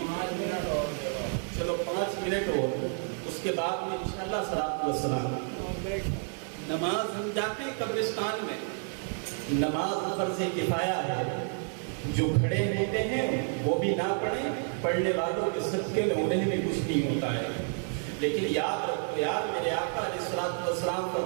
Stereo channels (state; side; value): silent; left; 58 dB below the other